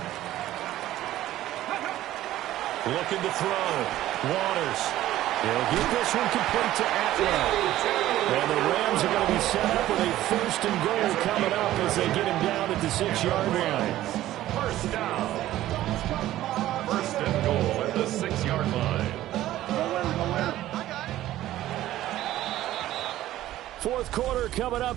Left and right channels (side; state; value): left; quieter; 14.3 dB